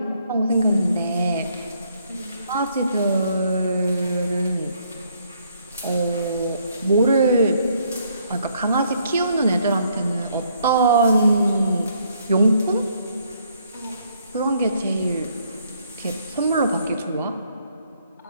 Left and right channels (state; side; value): inverted; both; correlation -0.68